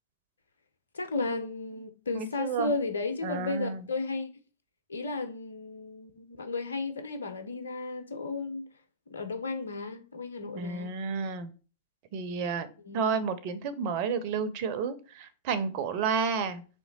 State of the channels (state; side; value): inverted; both; correlation -0.32